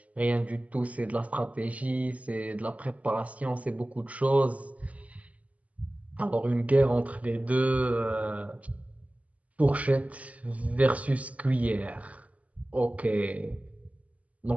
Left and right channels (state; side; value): late; left; 0.070 ms